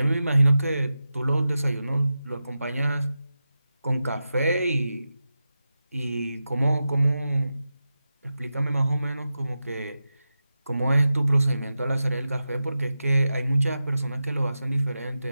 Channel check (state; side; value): inverted; both; correlation -0.91